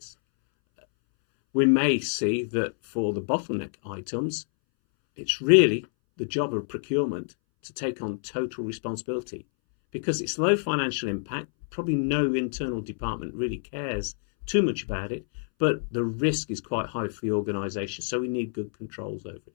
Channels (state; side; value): silent; right; 60 dB below the other